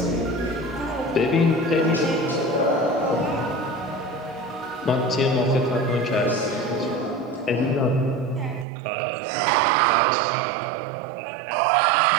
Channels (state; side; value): drops out; left; at 8.7 s